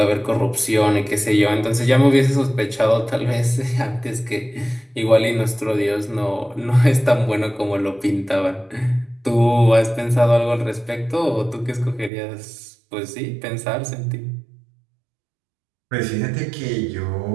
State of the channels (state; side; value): drops out; left; at 12.1 s